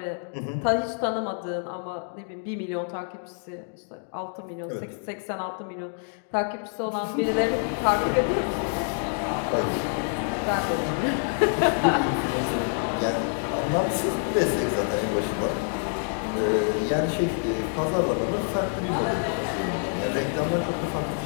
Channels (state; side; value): silent; right; 60 dB below the other